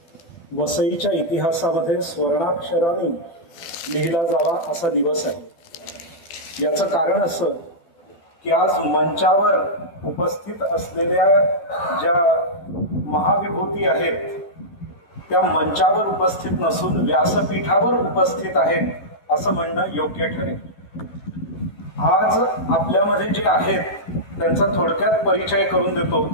वसईच्या इतिहासामध्ये स्वर्णाक्षराने लिहिला जावा असा दिवस आहे। याचं कारण असं की आज मंचावर उपस्थित असलेल्या ज्या महाविभूती आहेत त्या मंचावर उपस्थित नसून व्यासपीठावर उपस्थित आहेत असं म्हणणं योग्य ठरेल। आज आपल्यामध्ये जे आहेत त्यांचा थोडक्यात परिचय करून देतो।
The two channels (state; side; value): late; right; 12 ms